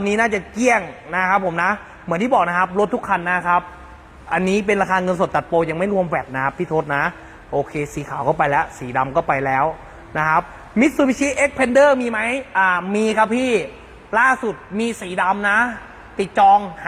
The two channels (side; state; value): both; identical; correlation 1.00